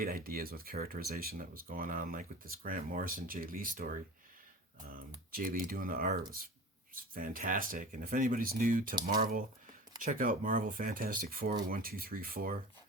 ideas with characterization that was going on, like with this Grant Morrison, Jay Lee story. Jay Lee doing the art was fantastic. And if anybody's new to Marvel, check out Marvel Fantastic Four, 1, 2, 3, 4.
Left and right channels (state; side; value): normal; both; correlation 0.35